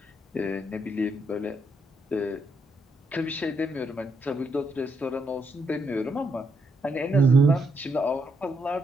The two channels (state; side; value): normal; both; correlation 0.77